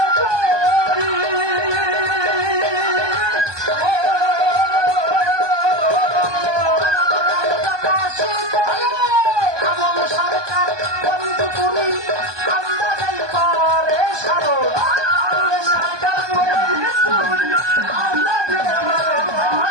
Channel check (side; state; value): left; late; 1.2 ms